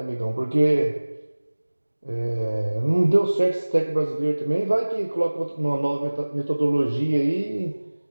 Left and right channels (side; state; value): both; inverted; correlation -1.00